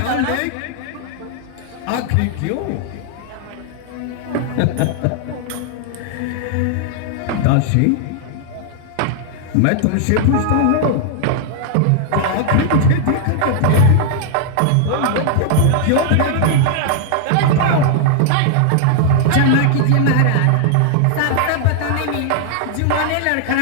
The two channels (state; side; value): different; both; correlation 0.00